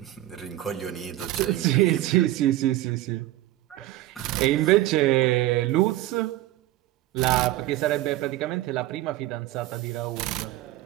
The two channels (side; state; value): left; quieter; 15.6 dB